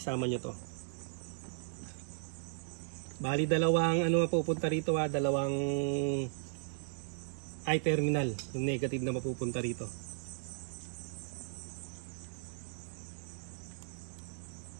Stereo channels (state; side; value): silent; left; 54 dB below the other